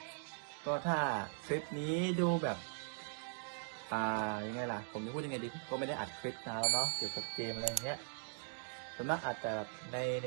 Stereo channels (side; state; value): left; silent; digital silence